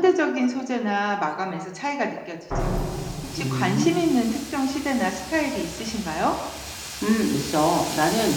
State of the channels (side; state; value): both; identical; correlation 1.00